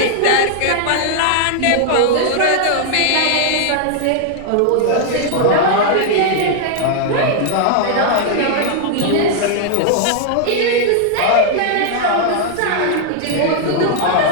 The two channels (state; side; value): different; both; correlation 0.00